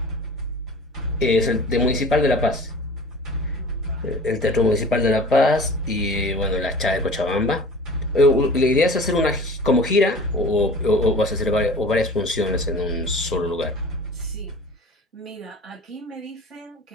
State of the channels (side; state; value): both; normal; correlation 0.41